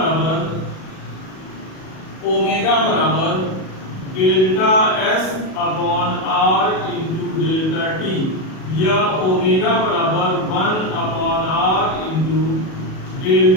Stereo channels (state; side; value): late; right; 37 ms